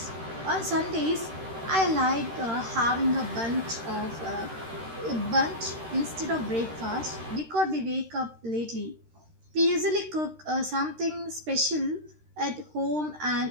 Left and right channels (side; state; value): left; late; 13 ms